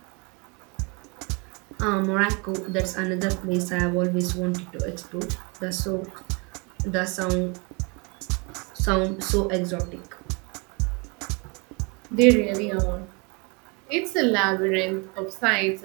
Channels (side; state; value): left; quieter; 30.8 dB